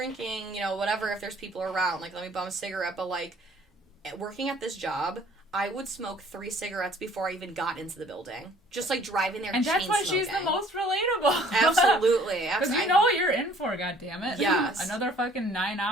you know, whatever, if there's people around, like, let me bum a cigarette. But, like, working at this job, I would smoke 3 cigarettes before I even got into the building. Just, like, driving there and chain smoking. And that's why she's the most relatable. Absolutely. Because you know what you're in for, goddammit. Yes. Another fucking 9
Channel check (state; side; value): normal; both; correlation 0.56